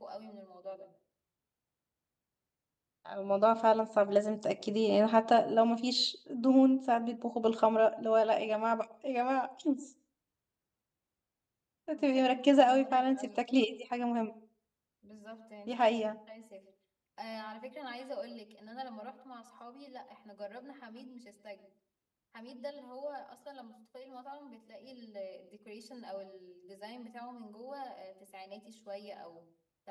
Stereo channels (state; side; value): identical; both; correlation 1.00